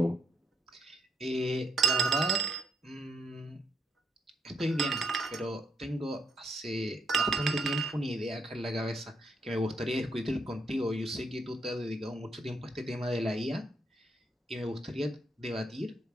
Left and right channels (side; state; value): both; normal; correlation 0.76